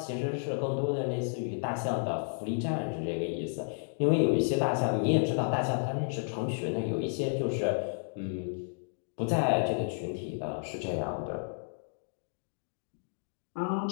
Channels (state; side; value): silent; right; digital silence